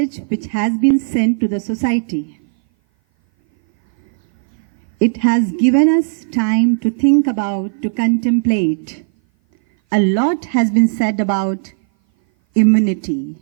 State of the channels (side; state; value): left; silent; 58 dB below the other